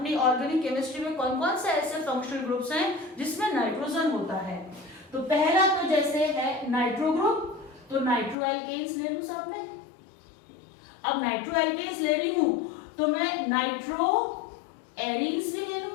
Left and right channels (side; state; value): right; drops out; at 8.3 s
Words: ऑर्गेनिक केमिस्ट्री में कौन कौन से ऐसे फंक्शनल ग्रुप्स हैं जिसमें नाइट्रोजन होता है। तो पहला तो जैसे है नाइट्रो ग्रुप, तो नाइट्रो एल्केन्स ले लूं साथ में। अब नाइट्रो एल्केन्स ले रही हूं तो मैं नाइट्रो एरीन्स भी ले